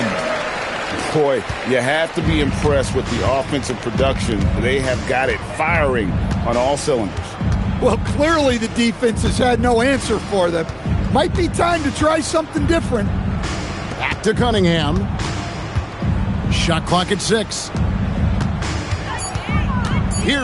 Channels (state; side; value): identical; both; correlation 1.00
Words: Boy, you have to be impressed with the offensive production. They have got it firing on all cylinders. Well, clearly the defense has had no answer for them. Might be time to try something different. Back to Cunningham. Shot clock at 6.